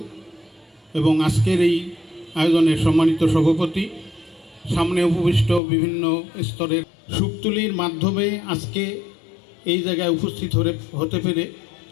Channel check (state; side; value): drops out; right; at 5.6 s